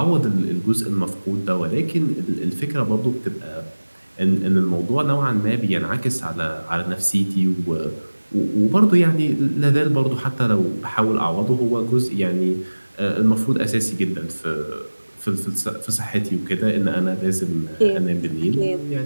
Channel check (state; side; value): inverted; both; correlation -1.00